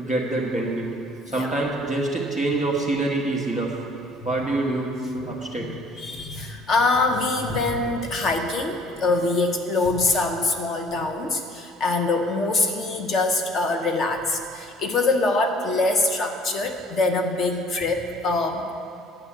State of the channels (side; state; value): both; normal; correlation 0.54